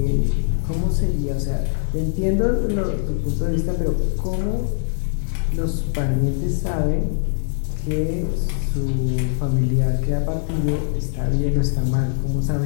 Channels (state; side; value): silent; right; 61 dB below the other